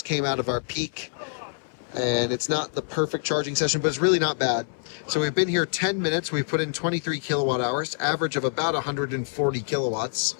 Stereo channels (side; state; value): right; silent; 61 dB below the other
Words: came out of our peak, and it's not the perfect charging session, but it's really not bad. So we've been here 10 minutes. We've put in 23 kilowatt hours, average of about 140 kilowatts.